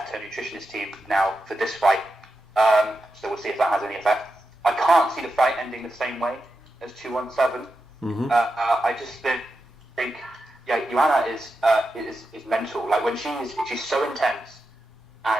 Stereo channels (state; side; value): normal; both; correlation 0.89